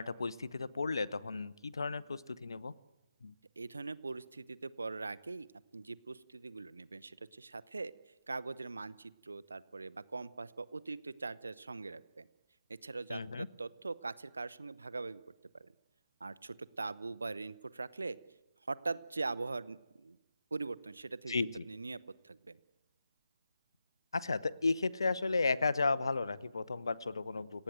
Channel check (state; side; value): inverted; both; correlation -0.89